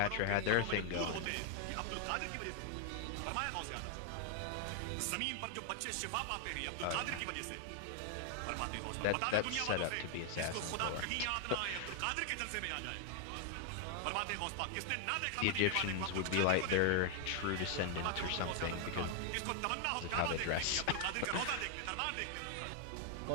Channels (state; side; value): different; both; correlation 0.00